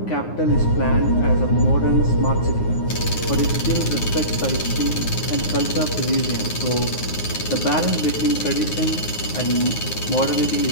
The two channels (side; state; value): right; late; 9.6 ms